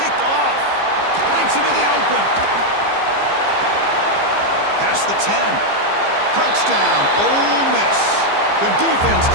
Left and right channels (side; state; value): left; late; 15 ms